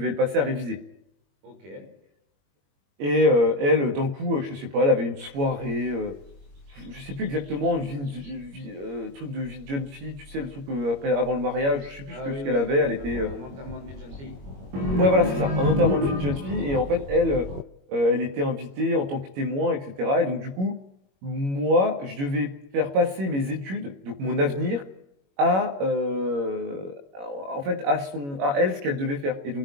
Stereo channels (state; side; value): late; left; 21 ms